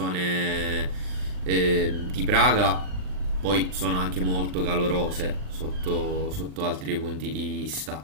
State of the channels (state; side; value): late; left; 39 ms